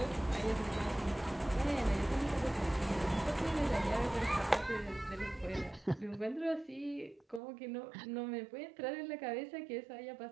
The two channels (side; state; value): left; drops out; at 7.4 s